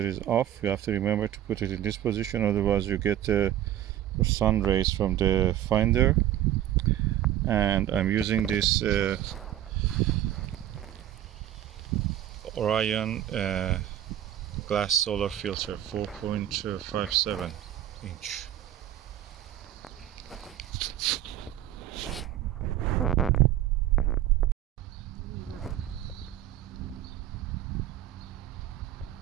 is off. You have to remember to put it in this position, otherwise you get the sun rays from the finder. And I'm using this Orion glass solar filter, 4.57 inch.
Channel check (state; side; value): quieter; left; 12.1 dB